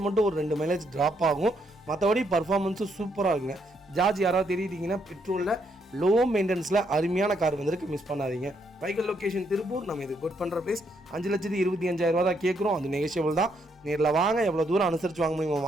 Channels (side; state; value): both; normal; correlation 0.74